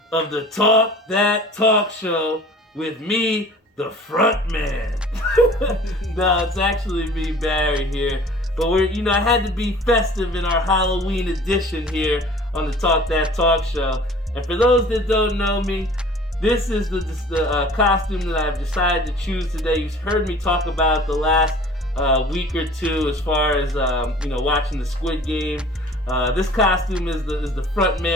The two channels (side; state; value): both; normal; correlation 0.47